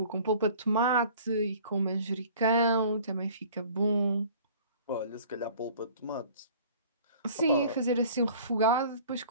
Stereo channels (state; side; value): inverted; both; correlation -0.49